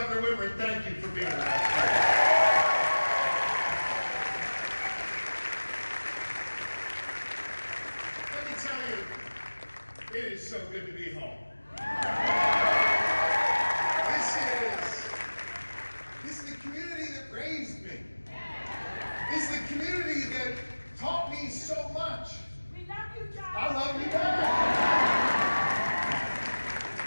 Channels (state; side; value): inverted; both; correlation -1.00